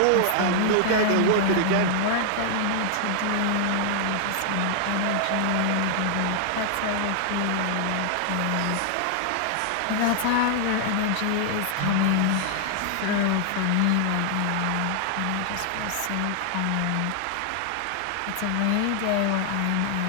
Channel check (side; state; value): both; different; correlation 0.00